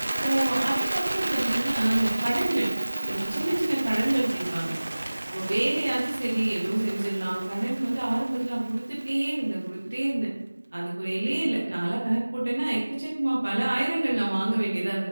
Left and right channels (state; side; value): inverted; both; correlation -1.00